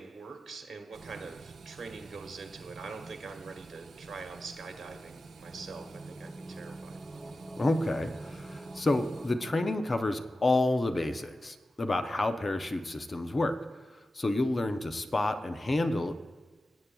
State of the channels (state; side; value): normal; both; correlation 0.93